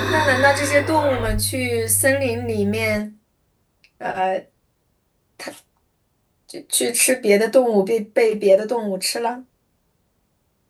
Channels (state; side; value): identical; both; correlation 1.00